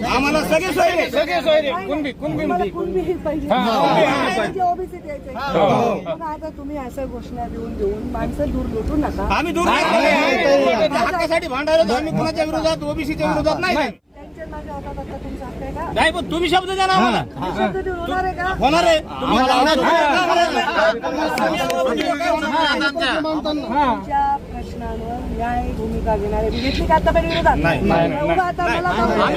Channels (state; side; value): identical; both; correlation 1.00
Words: आम्हाला सगळे सोयरे तुम्हाला कुणबी पाहिजे ओबीसी द्यायचे. आता तुम्ही असं घोषणा देऊन माणसं दूर लुटू नका. आम्ही दूर हक्कासाठी भांडायला आम्ही कुणाच्या विरोधात ओबीसीच्या विरोधात नाही. त्यांच्या माझ्या हातात आता तुमचा हक्क आहे का? नाही पण तुम्ही शब्द द्या ना आम्हाला. शब्द देऊन होणार आहे का? होणार आहे. तुमच्या प्रश्नांवर न्याय भूमिका घेणारे घेतली का आतापर्यंत विरोधात? एवढं आता मला